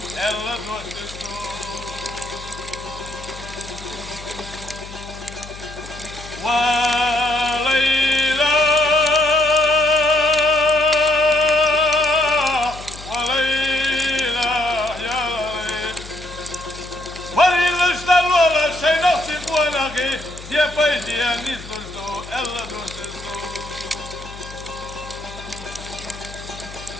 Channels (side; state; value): left; noise; hum, 15 dB below the sound